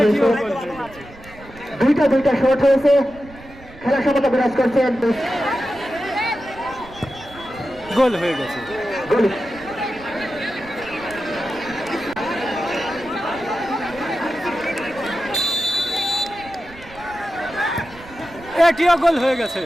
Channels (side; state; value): right; noise; rumble, 20 dB below the sound